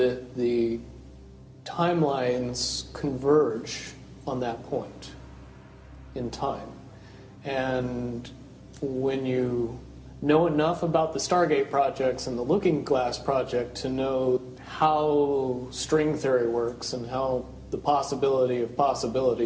the timelines converge on that point in time. And when you know enough about the Stargate projects and the Looking Glass project to know how string theory works and how the possibility of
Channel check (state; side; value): identical; both; correlation 1.00